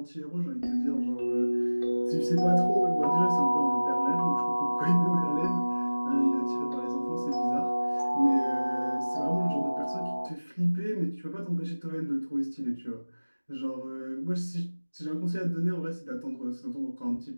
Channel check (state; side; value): inverted; both; correlation -1.00